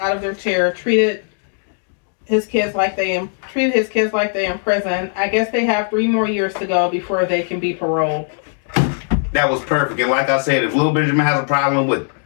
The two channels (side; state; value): right; silent; 67 dB below the other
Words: of their chair. Treated his kids like they in prison. I guess they have 3 more years to go before they can be paroled. That was perfect. And like I said, if little Benjamin has a problem with